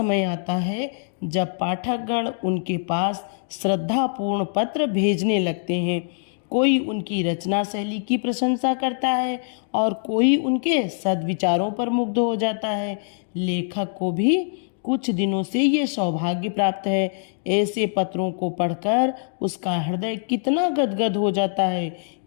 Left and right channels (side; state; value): right; silent; digital silence